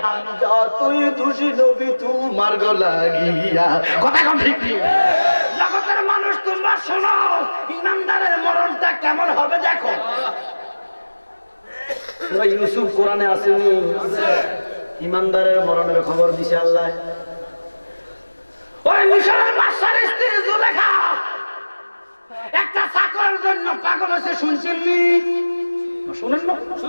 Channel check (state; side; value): inverted; both; correlation -1.00